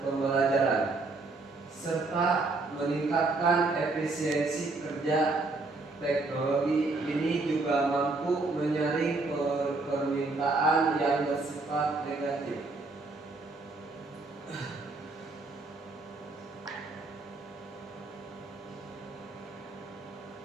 pembelajaran, serta meningkatkan efisiensi kerja. Teknologi ini juga mampu menyaring permintaan yang bersifat negatif.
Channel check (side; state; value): left; quieter; 3.4 dB